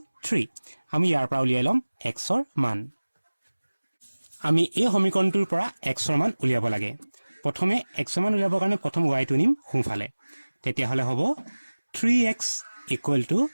3 আমি ইয়াৰ পৰা উলিয়াই লম x ৰ মান আমি এই সমীকৰণটোৰ পৰা x ৰ মান উলিয়াব লাগে প্ৰথমে x ৰ মান উলিয়াবৰ কাৰণে প্ৰথম y টো নিম সোঁফালে তেতিয়া হলে হ'ব 3x =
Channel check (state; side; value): inverted; both; correlation -1.00